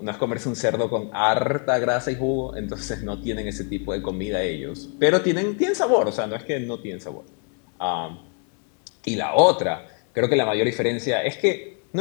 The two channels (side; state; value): right; quieter; 39.8 dB